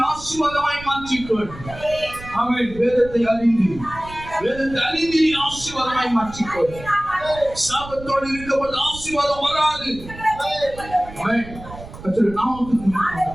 ஆசீர்வாதமாய் மாற்றிக்கொள். ஆமென். வேதத்தை அறிந்து நீ ஆசீர்வாதமாய் மாற்றிக்கொள். சாபத்தோடு இருக்கும்போது ஆசீர்வாதம் வராது. ஆமென். கர்த்தருடைய நாமத்துக்கு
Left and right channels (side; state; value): right; noise; rumble, 15 dB below the sound